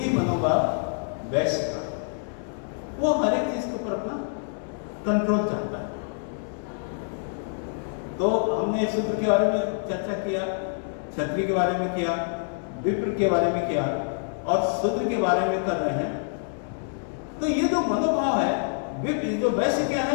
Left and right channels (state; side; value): silent; right; 61 dB below the other